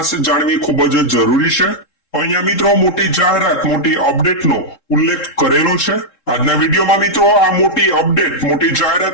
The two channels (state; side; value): late; right; 3.7 ms